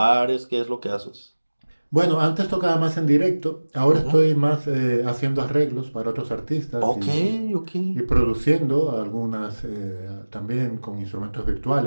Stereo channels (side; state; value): both; inverted; correlation -1.00